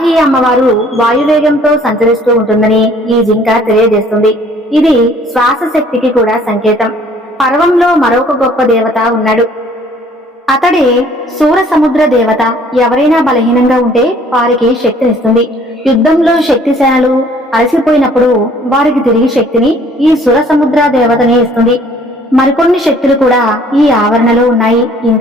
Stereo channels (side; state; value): both; normal; correlation 0.57